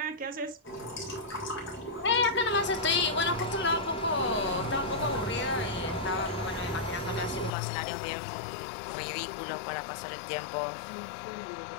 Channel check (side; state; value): right; drops out; at 7.5 s